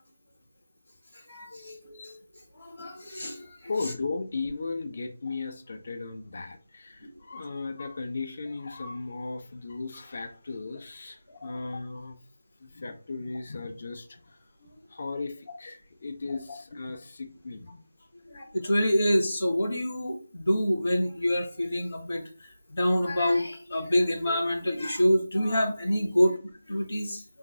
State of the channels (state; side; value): inverted; both; correlation -0.95